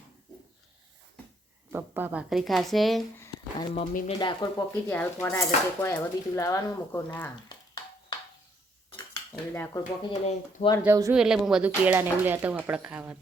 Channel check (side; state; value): both; normal; correlation 0.69